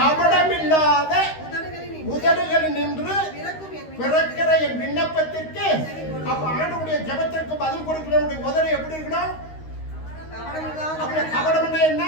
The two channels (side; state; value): right; late; 13 ms